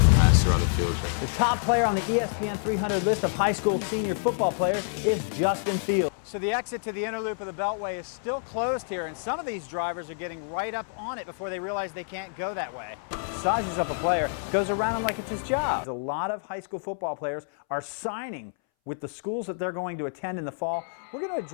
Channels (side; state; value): right; silent; 59 dB below the other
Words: passer on the field. The top player on the ESPN 300 list of high school senior football players is Justin Fields. So the exit to the inner loop of the Beltway is still closed here, and some of these drivers are getting right up on it before they realize they can't go that way. Sizes up a player, goes around him like it's his job. A lot of high school football players are signing with the schools that they're going to attend in the fall. We're going to